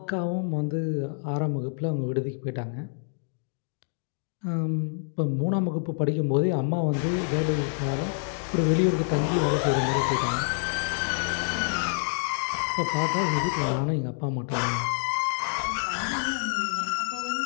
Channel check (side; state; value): right; silent; digital silence